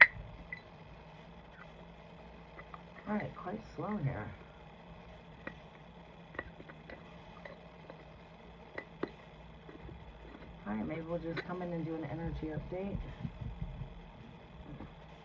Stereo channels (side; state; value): both; identical; correlation 1.00